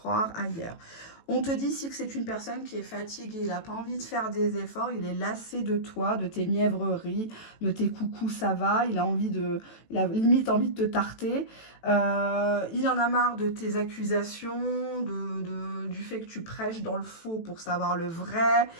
ailleurs. On te dit ici que c'est une personne qui est fatiguée, il n'a pas envie de faire des efforts, il est lassé de toi, de tes mièvreries, de tes coucous, ça va, il a limite envie de te tarter. Il en a marre de tes accusations, du fait que tu prêches dans le faux pour savoir le vrai.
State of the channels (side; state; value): right; late; 18 ms